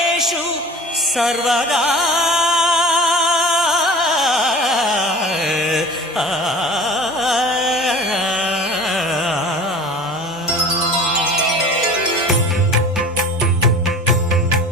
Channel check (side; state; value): both; normal; correlation 0.40